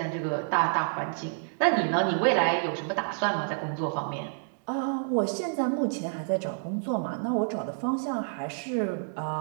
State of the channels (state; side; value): silent; left; digital silence